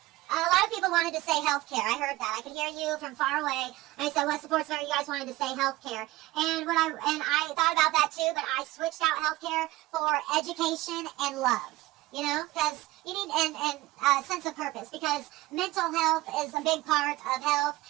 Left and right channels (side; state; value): left; quieter; 18.4 dB